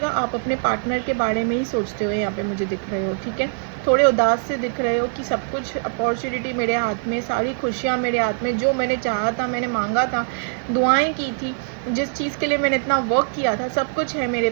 आप अपने पार्टनर के बारे में ही सोचते हुए यहाँ पे मुझे दिख रहे हो, ठीक है। थोड़े उदास से दिख रहे हो कि सब कुछ अपॉर्चुनिटी मेरे हाथ में, सारी खुशियाँ मेरे हाथ में, जो मैंने चाहा था, मैंने मांगा था, दुआएं की थी, जिस चीज़ के लिए मैंने इतना वर्क किया था, सब कुछ है मेरे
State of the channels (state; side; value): silent; left; 57 dB below the other